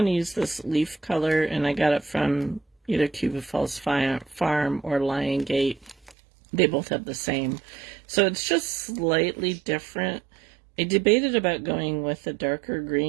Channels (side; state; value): left; drops out; at 6.2 s